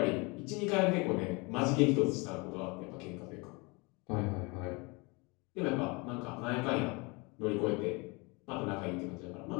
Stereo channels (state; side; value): quieter; right; 27.9 dB